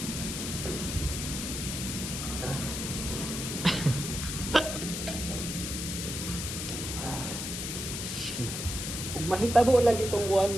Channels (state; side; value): noise; left; hiss, 4 dB below the sound